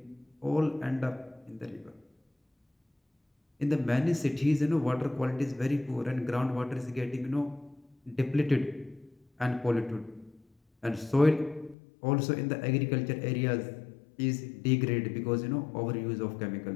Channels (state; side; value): drops out; right; at 11.8 s